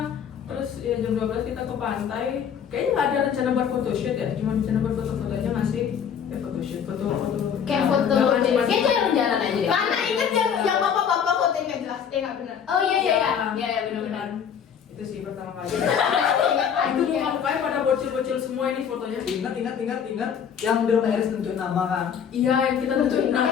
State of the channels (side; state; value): right; quieter; 7.8 dB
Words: terus ya jam 12 kita ke pantai. Kayaknya nggak ada rencana buat photoshoot ya, cuma rencana buat foto-foto aja nggak sih? Ya photoshoot, foto-foto. Kayak foto Cuma- Kayak itu yang jalan aja deh. Mana inget yang bapak-bapak foto yang nggak jelas? Nggak benar. Oh iya benar-benar. Itu sih pertama kali. Itu muka-mukanya pada bocil-bocil semua ini fotonya. Ingat. Yang di rumah Eris nentuin nama kan? Iya, yang kita nentuin nama.